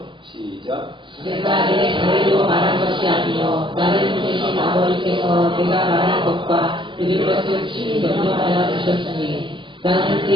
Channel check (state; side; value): late; left; 0.24 ms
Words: 시작. 내가 내 자의로 말한 것이 아니요 나를 보내신 아버지께서 내가 말한 것과 들을 것을 친히 명령하여 주셨으니 나는